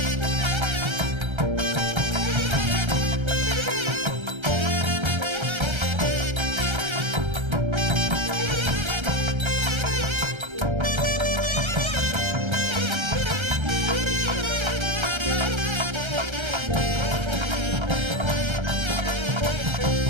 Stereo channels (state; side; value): late; left; 1.3 ms